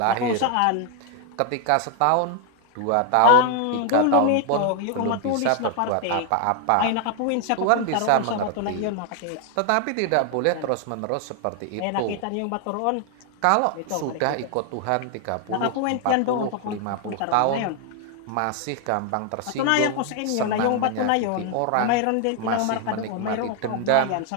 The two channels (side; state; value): both; different; correlation 0.00